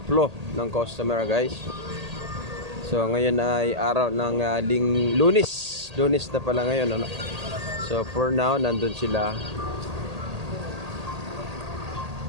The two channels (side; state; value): left; late; 1.8 ms